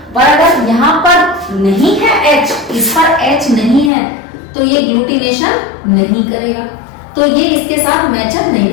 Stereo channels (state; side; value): drops out; right; at 3.9 s